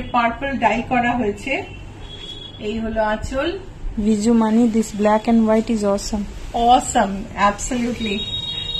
পার্পল ডাই করা হয়েছে। এই হলো আঁচল। Viju Mani, this black and white is awesome. Awesome, absolutely.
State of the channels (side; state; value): both; identical; correlation 1.00